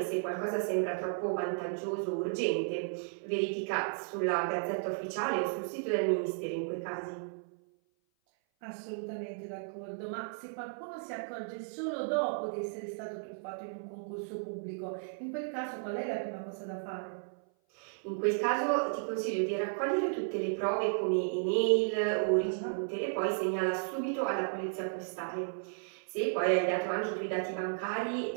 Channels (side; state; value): left; silent; 55 dB below the other